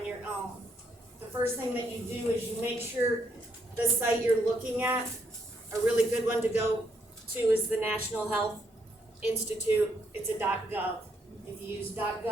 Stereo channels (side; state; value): both; normal; correlation 0.74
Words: your own, the first thing that you do is you make sure the site you're looking at, a really good one to go to is the National Health Institute. It's a .gov. If you use